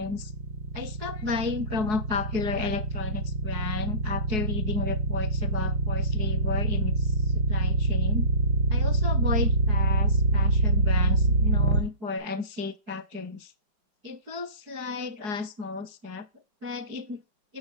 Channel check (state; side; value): late; left; 4.7 ms